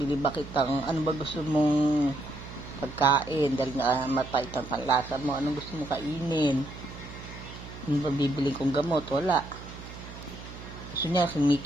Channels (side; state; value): right; noise; hum, 14 dB below the sound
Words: ba kitang, ano ba gusto mong pagkain? Dahil nga mapait ang panlasa mo, anong gusto mong kainin? Ano ba bibili kong gamot? Wala. Gusto niya,